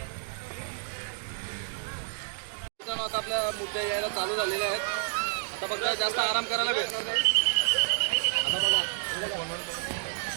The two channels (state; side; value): silent; left; digital silence